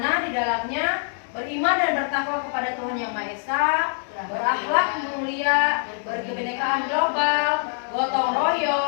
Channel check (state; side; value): silent; right; digital silence